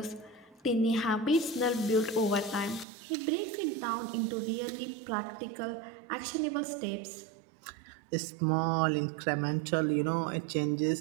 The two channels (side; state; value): left; drops out; at 2.9 s